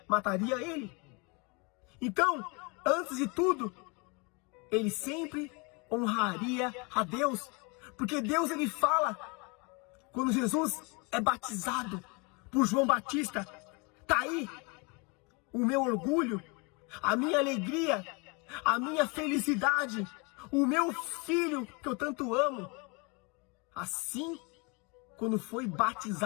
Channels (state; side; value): quieter; right; 30.4 dB